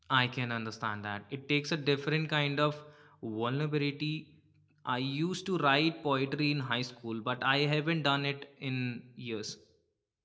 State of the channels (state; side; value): identical; both; correlation 1.00